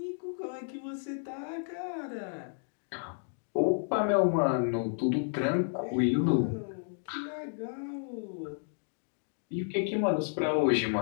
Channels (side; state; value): right; silent; digital silence